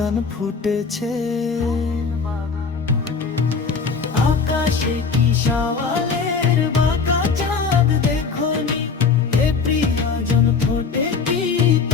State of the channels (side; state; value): right; quieter; 5.1 dB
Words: ফুটেছে। আকাশে কি শাওয়ালের বাঁকা চাঁদ দেখোনি, এ প্রিয়জন ফোটে কি